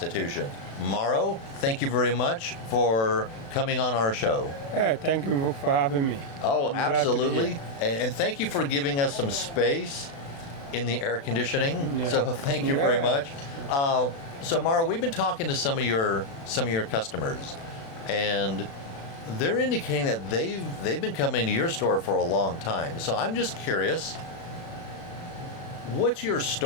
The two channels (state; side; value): late; right; 36 ms